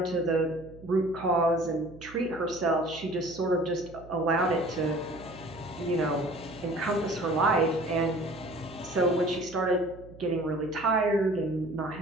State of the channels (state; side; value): noise; right; hum, 19 dB below the sound